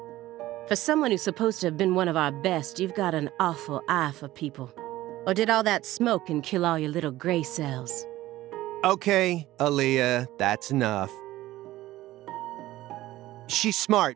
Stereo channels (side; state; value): left; quieter; 16.0 dB